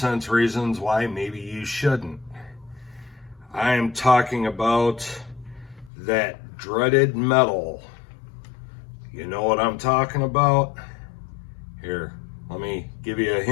reasons why maybe you shouldn't. I am talking about that dreaded metal. You know what I'm talking about? Here, let me give you a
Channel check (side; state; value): right; drops out; at 5.9 s